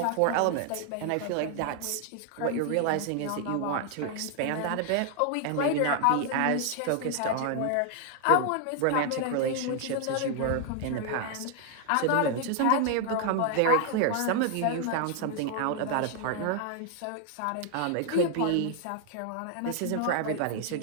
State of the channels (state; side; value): different; both; correlation 0.00